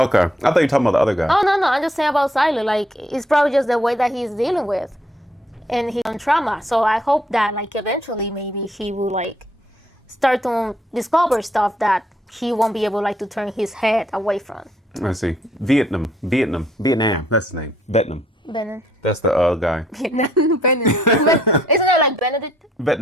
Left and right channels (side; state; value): both; normal; correlation 0.68